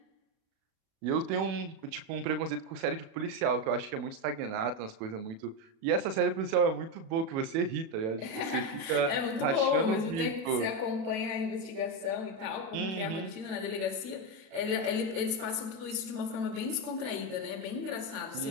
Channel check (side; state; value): left; late; 37 ms